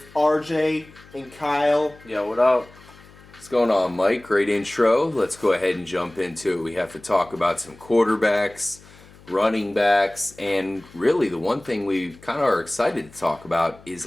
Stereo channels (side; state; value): left; noise; hum, 24 dB below the sound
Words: RJ and Kyle. Yo, what up? What's going on, Mike? Great intro. Let's go ahead and jump into it. We have to talk about some quarterbacks, running backs, and really the one thing we kind of are excited to talk about is